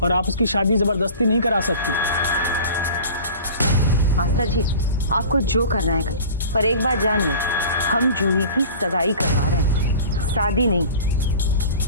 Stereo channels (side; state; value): both; inverted; correlation -0.39